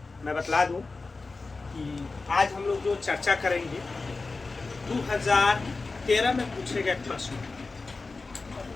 मैं बतला दूं कि आज हम लोग जो चर्चा करेंगे 2013 में पूछे गए प्रश्न।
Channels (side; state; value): right; quieter; 3.8 dB